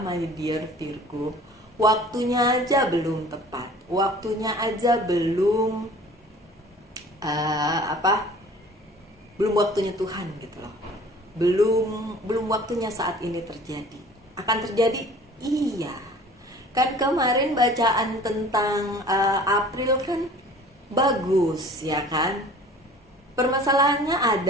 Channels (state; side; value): normal; both; correlation 0.47